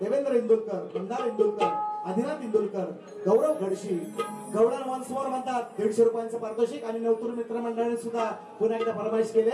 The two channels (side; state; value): both; identical; correlation 1.00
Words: इंदुलकर मंदार इंदुलकर आदिनाथ इंदुलकर गौरव घडशी गौडन वन्स मोर म्हणतात 150 रुपयांचं पारितोषिक आणि नवतरुण मित्र मंडळाने सुद्धा पुन्हा एकदा फरमाईश केले